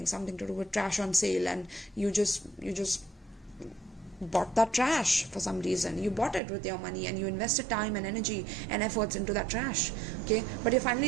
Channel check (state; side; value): drops out; left; at 6.4 s